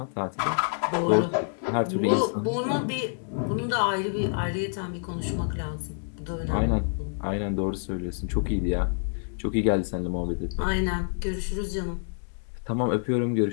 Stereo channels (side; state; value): right; silent; 59 dB below the other